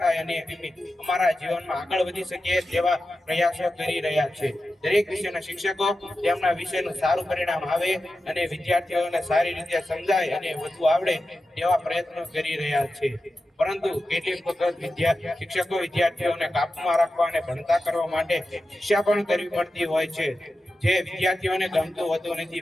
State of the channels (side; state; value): both; normal; correlation 0.92